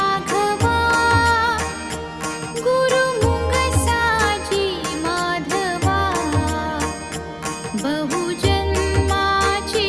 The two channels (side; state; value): right; noise; hum, 27 dB below the sound